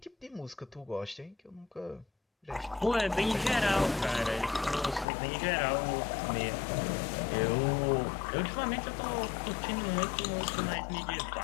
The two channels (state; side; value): drops out; right; at 5.1 s